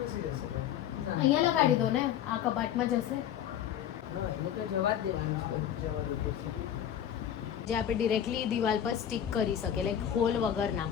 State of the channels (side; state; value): right; quieter; 10.1 dB